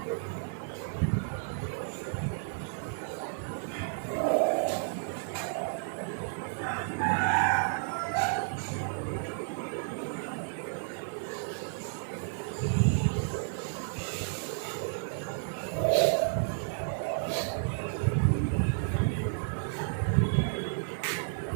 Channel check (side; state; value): left; silent; digital silence